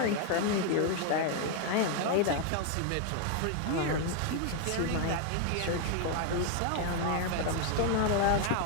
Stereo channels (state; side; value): different; both; correlation 0.01